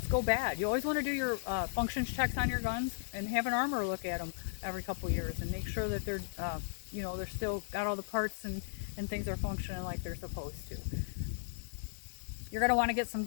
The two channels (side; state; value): right; silent; digital silence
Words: go bad. You always want to do your functions checks on your guns and have an armor look at them every couple years and make sure that they're, you know, they're still got all the parts and things are functioning like they're supposed to. You're going to want to get some